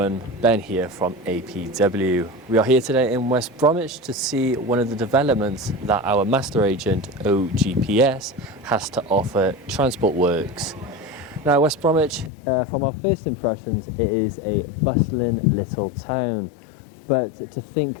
Ben here from APW. We are here today in West Bromwich to see one of the developments that our master agent OGPS has to offer Transport Works. Now West Bromwich, from our first impressions, it is a bustling little town. But to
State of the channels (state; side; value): drops out; right; at 12.3 s